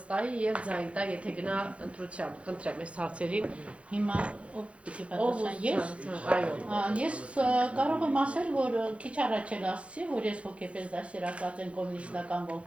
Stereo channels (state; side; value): late; left; 0.062 ms